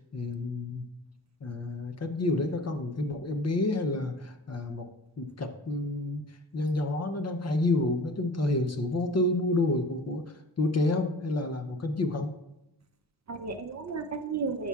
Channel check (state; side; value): normal; both; correlation 0.42